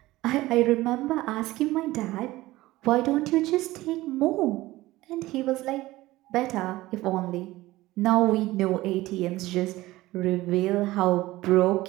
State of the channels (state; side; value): quieter; left; 17.9 dB